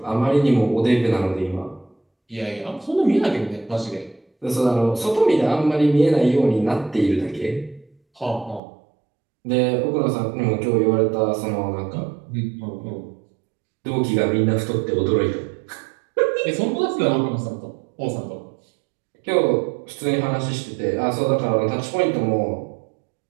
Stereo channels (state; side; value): drops out; left; at 8.6 s